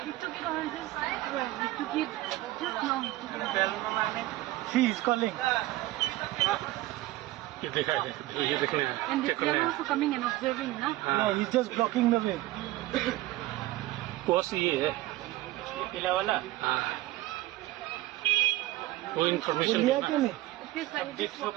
he took it on just he took it just now. She is calling. ये देखा है, ये देखने हैं, And चेक they करने are हैं। also coming and observing, na? No, he's just blocking the way. Course ये है। पीला वाला हाँ। वो इन्फॉर्मेशन लिया क्यों नहीं?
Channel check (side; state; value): left; quieter; 17.2 dB